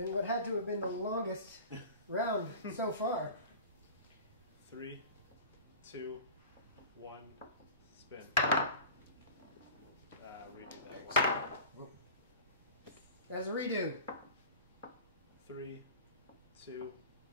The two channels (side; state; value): both; inverted; correlation -0.38